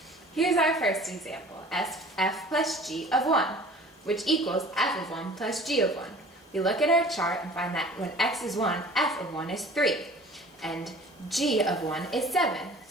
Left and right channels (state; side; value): normal; both; correlation 0.46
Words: Here's our first example, f plus g of 1, which equals f of 1 plus g of 1. We look at our chart and find that when x is 1, f of 1 is 3, and g of 1 is 7,